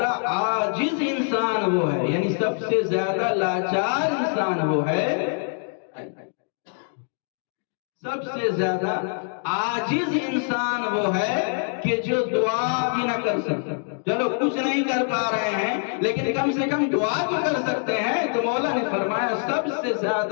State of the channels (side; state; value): right; silent; 62 dB below the other